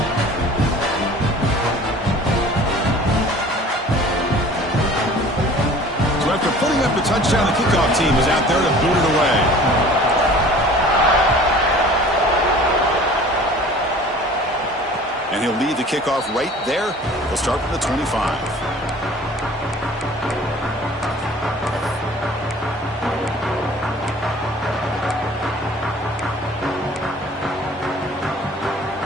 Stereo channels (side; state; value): both; normal; correlation 0.47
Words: After putting up the touchdown, the kickoff team is out there to boot it away. And he'll lead the kickoff right there. He'll start from the 25.